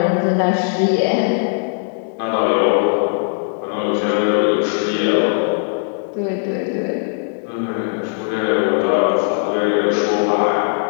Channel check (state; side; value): silent; right; digital silence